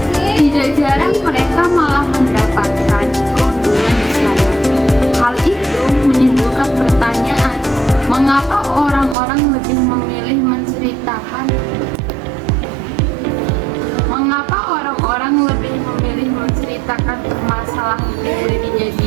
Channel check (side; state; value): left; drops out; at 9.2 s